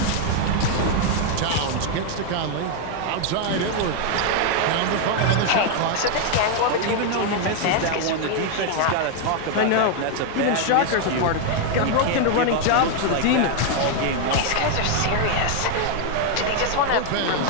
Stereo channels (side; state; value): both; different; correlation 0.00